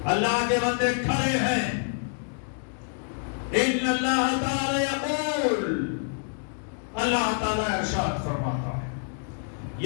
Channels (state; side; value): silent; right; 57 dB below the other